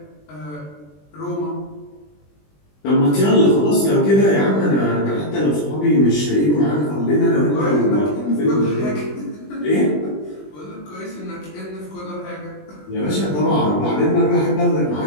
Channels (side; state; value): right; late; 20 ms